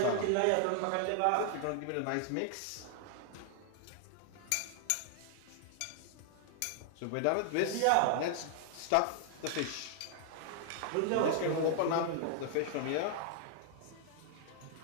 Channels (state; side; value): different; both; correlation 0.00